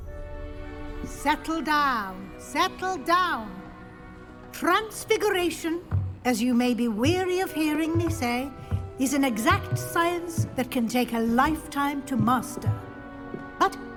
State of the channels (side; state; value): both; identical; correlation 1.00